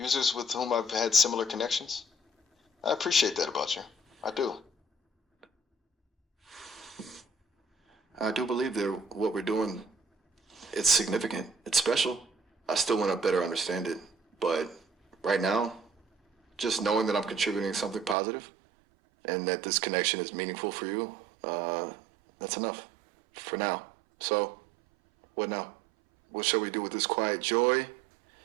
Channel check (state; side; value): drops out; left; at 18.2 s